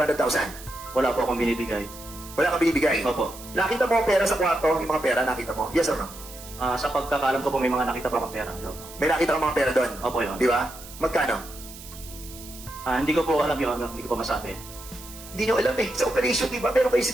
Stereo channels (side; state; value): right; noise; hiss, 16 dB below the sound